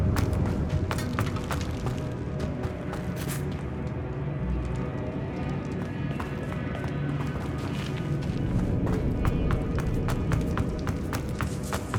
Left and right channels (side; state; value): both; identical; correlation 1.00